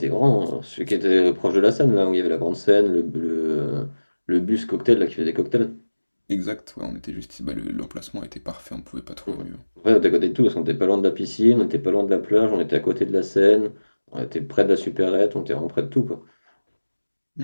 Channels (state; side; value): inverted; both; correlation -1.00